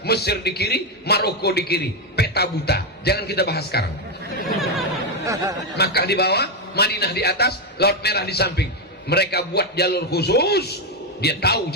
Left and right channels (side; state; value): both; normal; correlation 0.06